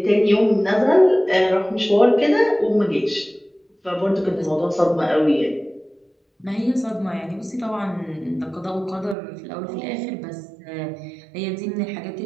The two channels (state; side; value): drops out; left; at 9.2 s